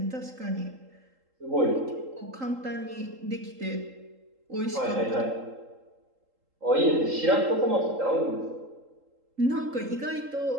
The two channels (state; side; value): late; left; 3.8 ms